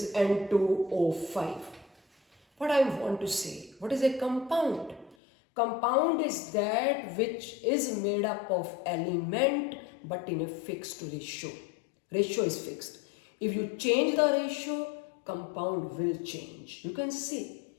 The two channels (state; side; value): drops out; right; at 5.2 s